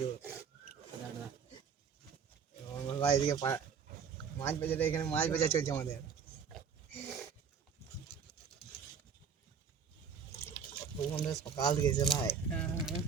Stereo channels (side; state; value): left; quieter; 6.7 dB